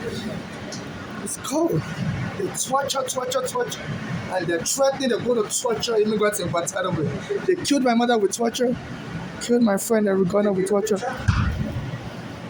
this shit. It's cold. They torture. And they're threatening they're going to torture immigrants in Guantanamo. They killed my mother with torture, killed my friend Arigona with torture.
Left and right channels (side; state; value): both; identical; correlation 1.00